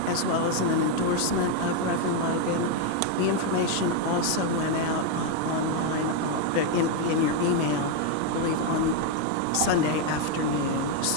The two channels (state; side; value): different; both; correlation 0.01